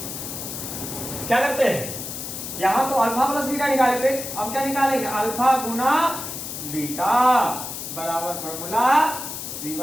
क्या करते हैं यहां तो अल्फा प्लस बीटा निकाले थे। अब क्या निकालेंगे अल्फा गुना बीटा बराबर फॉर्मूला सी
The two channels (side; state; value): left; noise; hiss, 7 dB below the sound